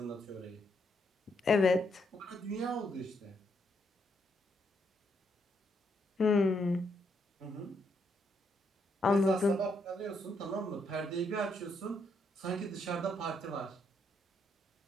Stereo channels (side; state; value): both; normal; correlation 0.76